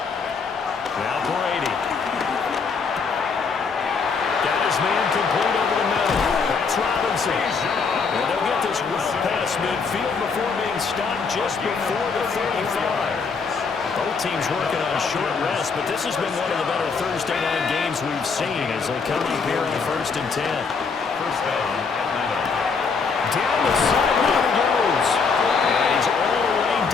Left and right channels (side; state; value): right; quieter; 5.1 dB